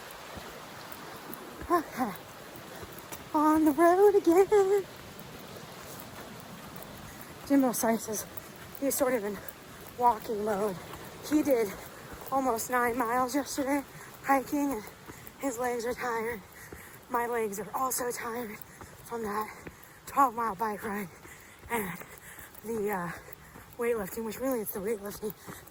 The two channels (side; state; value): both; identical; correlation 1.00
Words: okay, on the road again. Jimbo Slice is, he's sort of in walking mode. He did almost 9 miles yesterday hiking, and his legs are tired. My legs are also tired from that 12-mile bike ride and the weightlifting, which really it's the weightlifting.